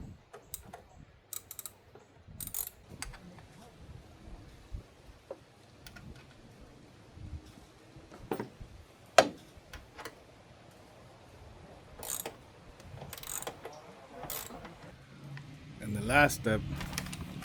And the last step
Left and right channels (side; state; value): both; identical; correlation 1.00